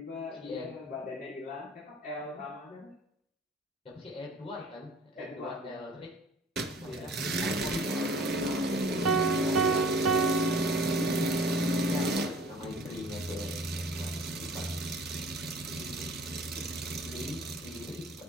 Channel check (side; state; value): both; normal; correlation 0.50